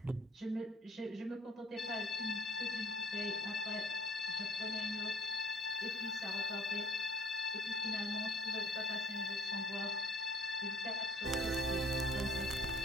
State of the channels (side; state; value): both; normal; correlation 0.52